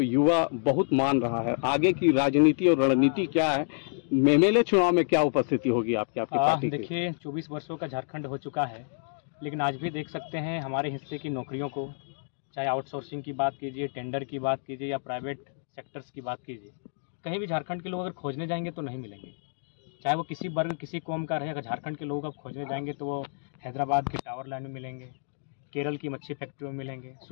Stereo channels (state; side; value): silent; right; digital silence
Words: युवा बहुत मान रहा है, आगे की राजनीति और रणनीति क्या है? एमएलए चुनाव में क्या उपस्थिति होगी आपकी पार्टी की? देखिए, 24 वर्षों का झारखंड हो चुका है, लेकिन आज भी देख सकते हैं हमारे हिस्से की नौकरियों को, चाहे आउटसोर्सिंग की बात कीजिए, टेंडर की बात कीजिए या प्राइवेट सेक्टर्स की बात कीजिए, कहीं भी झारखंड के लोग अगर खोजने जाएंगे तो नहीं मिलेंगे। चाहे वो किसी वर्ग किसी कौम का रहे, अगर झारखंड के लोग अब खोजने जाएंगे तो वो हैदराबाद के टावर लैंड में मिलेंगे, केरल की मच्छी फैक्ट्री में मिलेंगे,